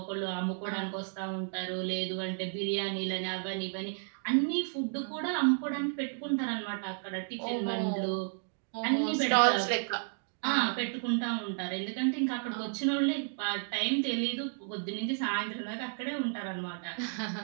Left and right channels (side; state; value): left; silent; 56 dB below the other